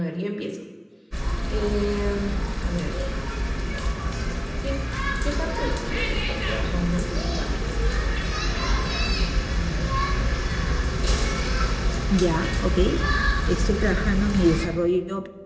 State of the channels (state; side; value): identical; both; correlation 1.00